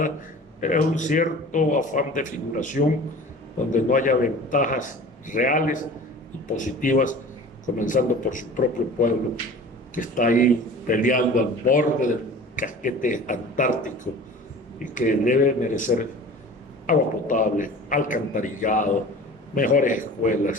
Es un cierto afán de figuración donde no haya ventajas reales y positivas, comenzando por su propio pueblo, que está ahí peleando al borde del casquete antártico y que debe merecer agua potable, alcantarillado, mejores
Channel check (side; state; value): both; normal; correlation 0.41